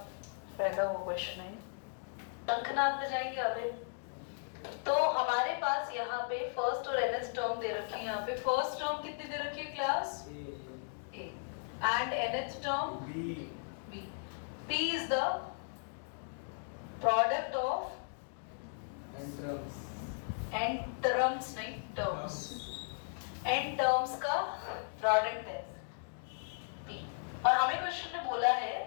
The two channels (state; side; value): silent; right; digital silence